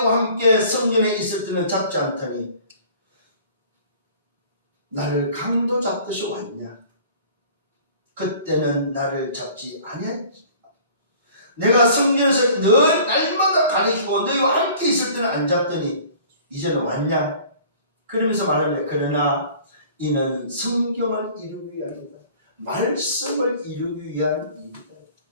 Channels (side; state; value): both; inverted; correlation -0.49